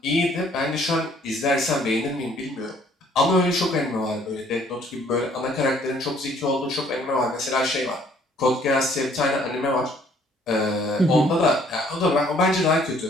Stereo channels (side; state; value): both; normal; correlation 0.61